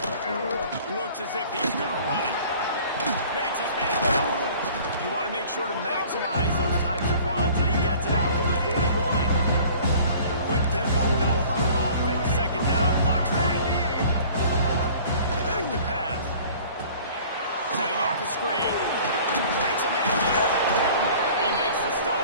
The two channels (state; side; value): inverted; both; correlation -0.49